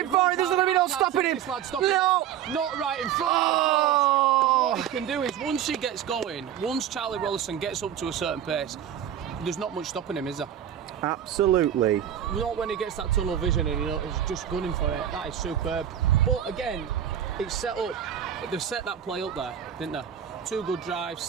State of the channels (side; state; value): left; quieter; 9.9 dB